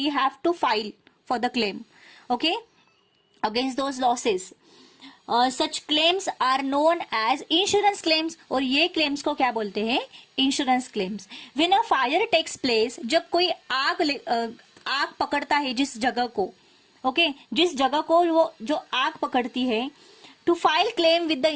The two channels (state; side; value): identical; both; correlation 1.00